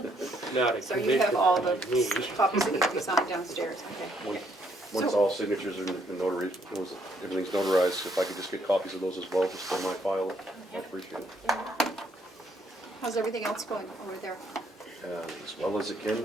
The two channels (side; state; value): both; normal; correlation 0.70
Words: not a So you have commissioner all the like me. copies that need to be signed downstairs, okay. Once all signatures are notary, everything's notarized, if I could just get copies of those as well, just for my file, I'd appreciate it. How's everything else going over there? As well as it